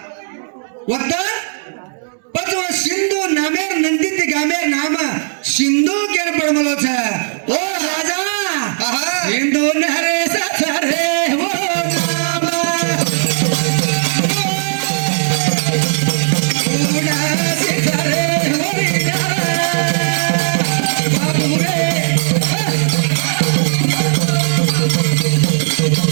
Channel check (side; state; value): left; silent; digital silence